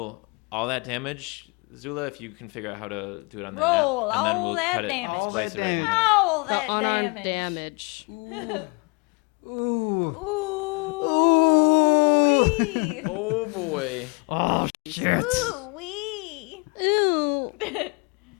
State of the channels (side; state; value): right; quieter; 32.1 dB